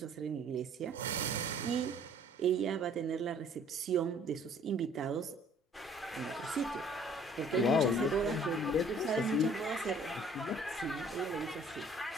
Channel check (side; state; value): both; normal; correlation 0.56